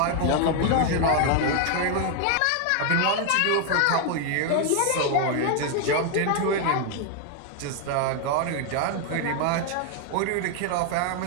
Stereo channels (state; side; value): different; both; correlation 0.00